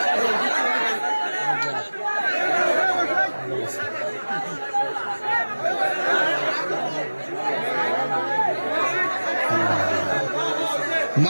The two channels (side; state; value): both; inverted; correlation -1.00